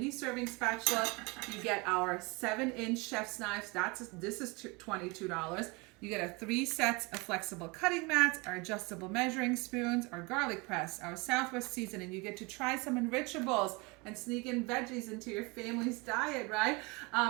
serving spatula. You get our 7-inch chef's knives. This is $22. You get 3 sets of flexible cutting mats, our adjustable measuring spoons, our garlic press, our Southwest seasoning. You get to try some enrichables and sneak in veggies into your family's diet, right?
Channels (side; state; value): left; quieter; 27.4 dB